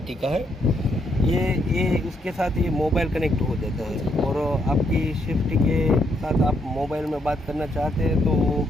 का है। ये उसके साथ ये मोबाइल कनेक्ट हो जाता है और आपकी शिफ्ट के साथ आप मोबाइल में बात करना चाहते हैं तो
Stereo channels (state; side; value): normal; both; correlation 0.75